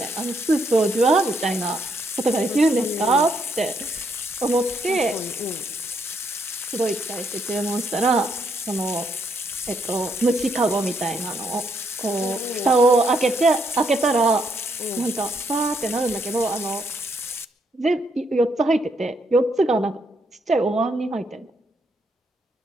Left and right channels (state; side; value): normal; both; correlation 0.75